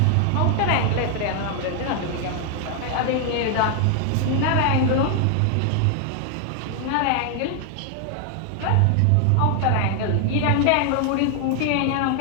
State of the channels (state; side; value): different; both; correlation 0.00